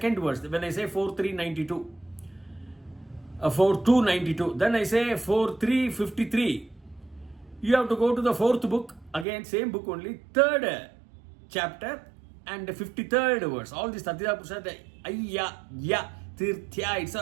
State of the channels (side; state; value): left; drops out; at 9.2 s